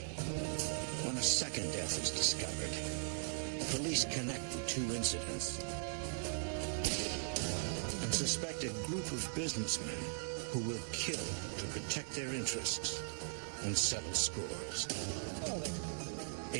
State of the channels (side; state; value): left; silent; digital silence